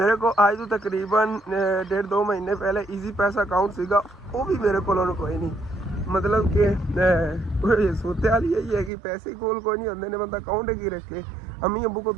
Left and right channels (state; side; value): drops out; left; at 8.9 s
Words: को आज तो तकरीबन 1.5-2 महीने पहले ईजी पैसा अकाउंट सीगा, वो भी मेरे को कोई नहीं। मतलब कि सोते वाली यही है कि पैसे कोल कोई नहीं होंगे, बंदा अकाउंट की रखे। अम्मी अबू को